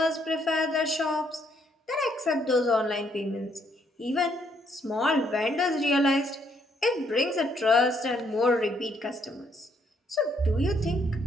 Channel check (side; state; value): both; normal; correlation 0.71